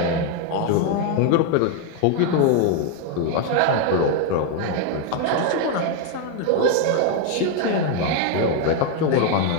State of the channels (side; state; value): both; different; correlation 0.01